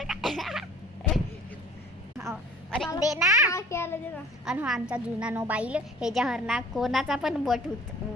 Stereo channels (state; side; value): normal; both; correlation 0.49